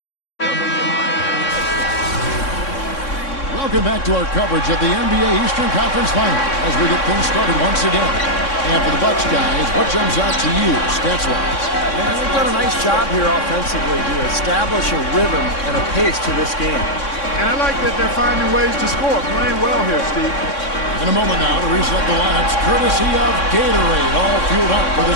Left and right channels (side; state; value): right; late; 3.6 ms